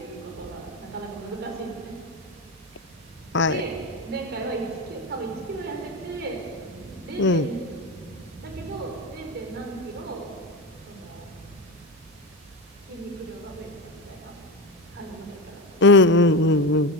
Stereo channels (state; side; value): normal; both; correlation 0.19